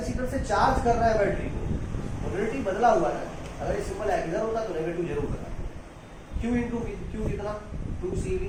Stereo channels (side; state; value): both; identical; correlation 1.00